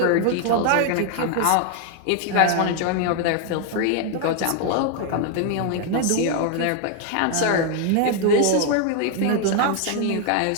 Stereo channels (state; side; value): different; both; correlation 0.00